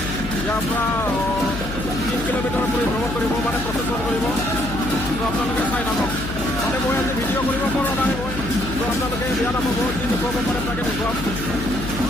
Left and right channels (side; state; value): left; noise; hum, 8 dB below the sound